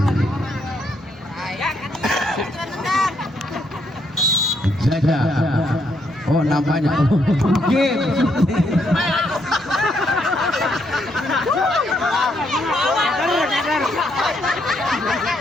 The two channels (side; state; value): both; normal; correlation 0.74